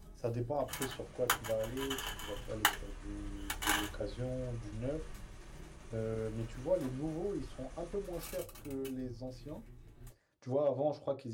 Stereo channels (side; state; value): both; identical; correlation 1.00